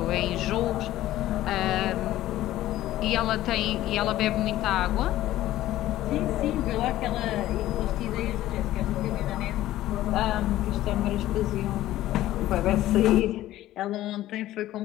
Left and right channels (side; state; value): right; quieter; 14.6 dB